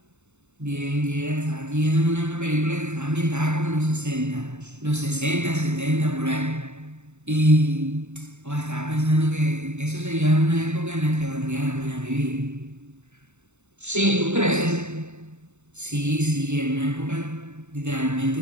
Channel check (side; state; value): left; late; 0.82 ms